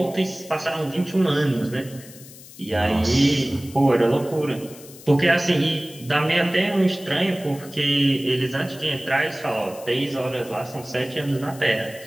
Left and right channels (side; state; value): left; noise; hiss, 19 dB below the sound